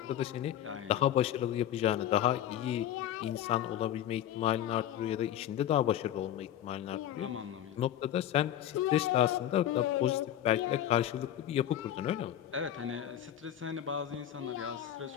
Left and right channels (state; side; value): quieter; right; 11.3 dB